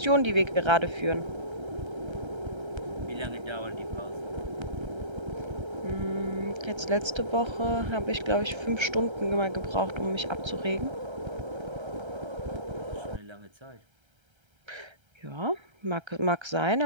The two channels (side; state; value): left; late; 1.3 ms